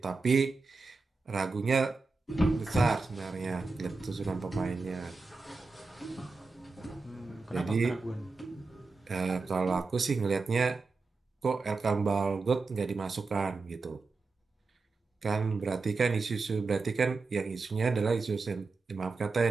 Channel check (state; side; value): quieter; left; 4.0 dB